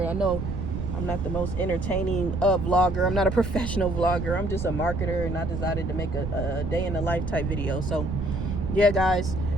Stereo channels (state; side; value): noise; right; rumble, 4 dB below the sound